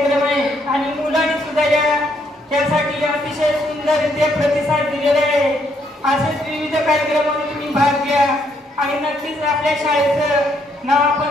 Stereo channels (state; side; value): normal; both; correlation 0.72